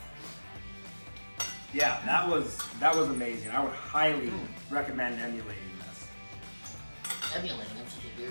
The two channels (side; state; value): both; inverted; correlation -1.00